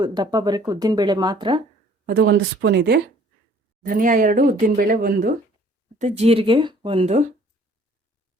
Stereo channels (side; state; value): both; normal; correlation 0.56